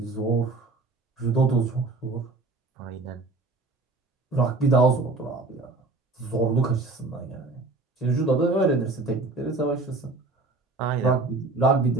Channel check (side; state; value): left; quieter; 3.5 dB